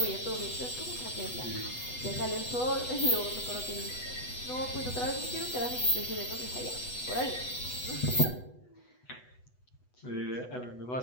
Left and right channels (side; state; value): right; late; 8.1 ms